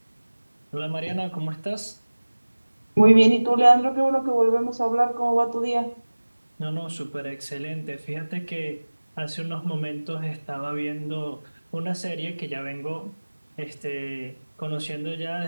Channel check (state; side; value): inverted; both; correlation -1.00